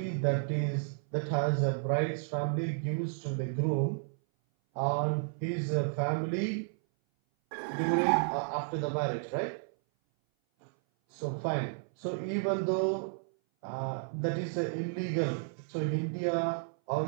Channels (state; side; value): silent; left; 56 dB below the other